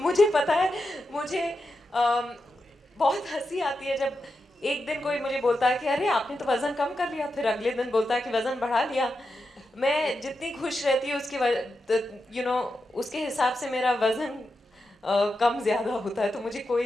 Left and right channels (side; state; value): both; normal; correlation 0.88